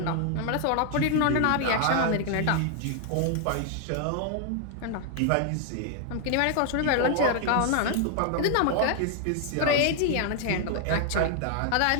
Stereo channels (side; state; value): both; different; correlation 0.00